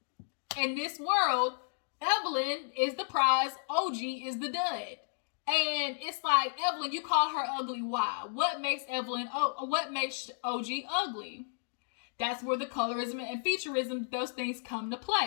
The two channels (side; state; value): right; silent; digital silence